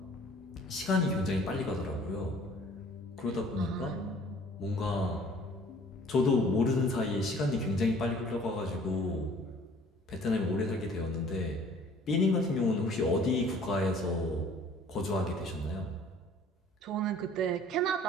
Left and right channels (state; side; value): normal; both; correlation 0.53